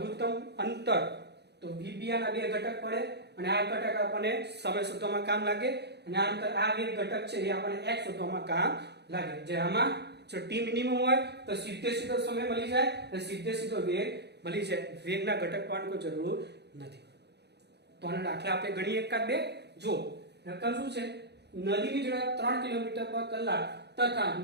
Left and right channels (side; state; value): left; late; 0.49 ms